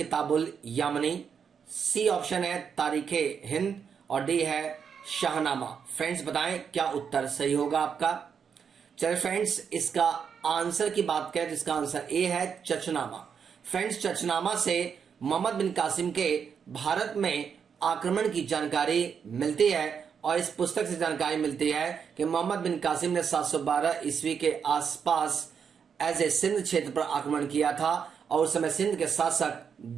यामनी, सी ऑप्शन है तारीखे हिंद और डी है शाहनामा। फ्रेंड्स बताएं क्या उत्तर सही होगा आपका। चलिए फ्रेंड्स, इसका आंसर की बात करें तो इसका आंसर ए है चचनामा। फ्रेंड्स चचनामा से मोहम्मद बिन कासिम के भारत में आक्रमण की जानकारी मिलती है और इस पुस्तक से जानकारी मिलती है कि मोहम्मद बिन कासिम ने 712 ईस्वी के आसपास एज ए सिंध क्षेत्र पर आक्रमण किया था और उस समय सिंध के शासक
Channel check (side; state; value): left; quieter; 6.9 dB